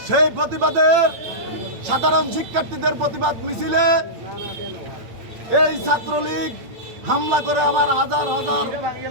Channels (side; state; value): left; late; 8.9 ms